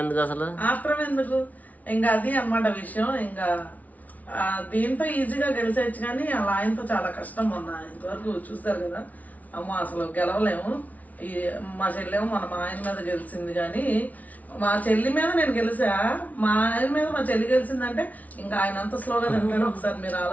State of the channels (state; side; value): late; right; 0.073 ms